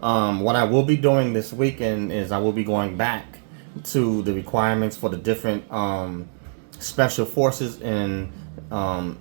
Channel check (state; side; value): silent; left; 62 dB below the other